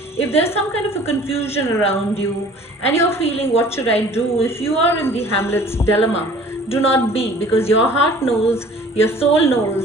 if there's some kind of a confusion around you and you're feeling what should I do, if you are in the Hamlet's dilemma, do not be, because your heart knows, your soul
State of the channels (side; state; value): both; normal; correlation 0.49